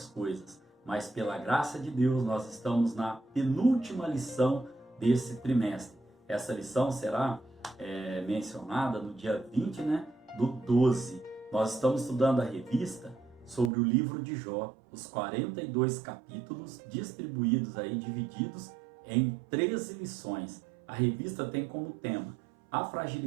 coisas. Mas pela graça de Deus, nós estamos na penúltima lição desse trimestre. Essa lição será mencionada no dia 20, do 12. Nós estamos estudando a revista sobre o livro de Jó, os 42 capítulos distribuídos aí, divididos em 13 lições. A revista tem como tema a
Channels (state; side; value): drops out; left; at 13.7 s